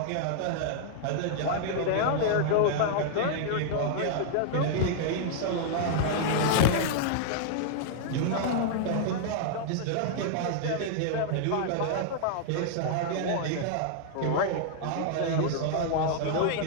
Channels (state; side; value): different; both; correlation -0.01